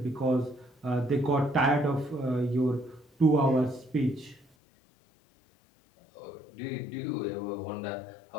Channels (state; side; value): drops out; right; at 4.5 s